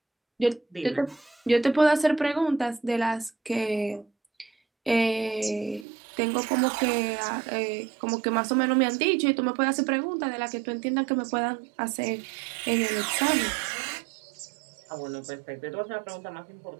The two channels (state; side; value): drops out; left; at 5.9 s